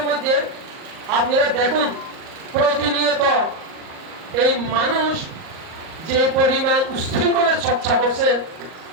মধ্যে আপনারা দেখুন, প্রতিনিয়ত এই মানুষ যে পরিমাণ উশৃঙ্খলের চর্চা করছে,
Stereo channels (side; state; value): left; late; 38 ms